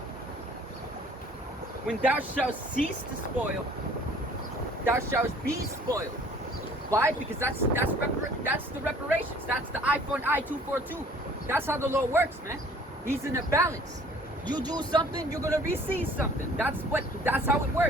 When thou shalt cease to spoil, thou shalt be spoiled. Why? Because that's the reparations. That's the eye for an eye, tooth for a tooth. That's how the Lord works, man. He's in a balance. You do something, you're gonna receive something. That's how it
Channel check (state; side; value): normal; both; correlation 0.53